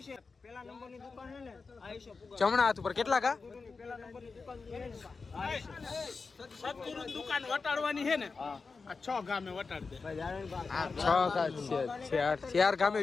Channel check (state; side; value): quieter; right; 4.5 dB